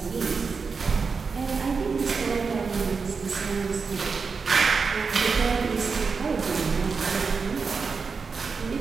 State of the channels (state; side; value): quieter; left; 5.0 dB